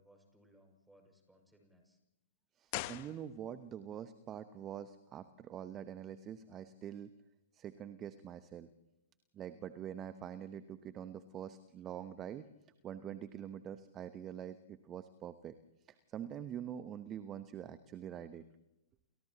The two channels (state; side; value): quieter; left; 5.9 dB